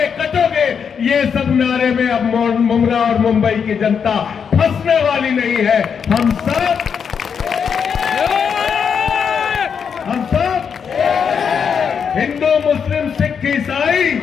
कटोगे, ये सब नारे में अब मुमरा और मुंबई की जनता फंसने वाली नहीं है। हम सब हिंदू मुस्लिम सिख ईसाई,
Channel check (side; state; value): right; quieter; 6.8 dB